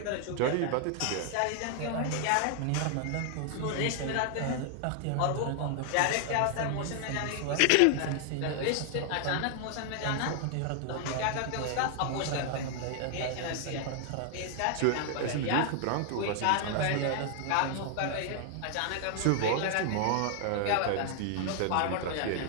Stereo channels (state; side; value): different; both; correlation 0.00